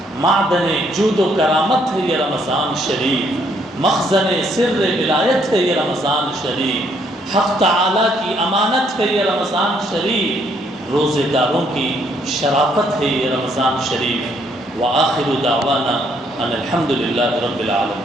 معدن جود و کرامت ہے یہ رمضان شریف، مخزن سر ولایت ہے یہ رمضان شریف، حق تعالی کی امانت ہے یہ رمضان شریف، روزے داروں کی شرافت ہے یہ رمضان شریف۔ وآخر دعوانا ان الحمد للہ رب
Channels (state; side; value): normal; both; correlation 0.69